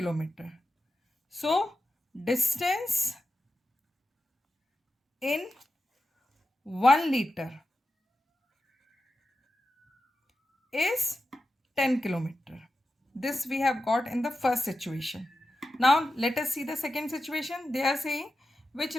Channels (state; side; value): normal; both; correlation 0.91